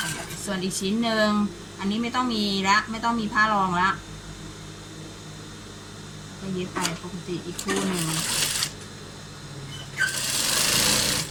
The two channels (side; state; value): both; identical; correlation 1.00